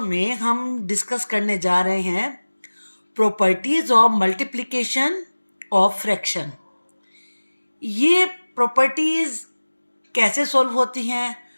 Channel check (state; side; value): inverted; both; correlation -1.00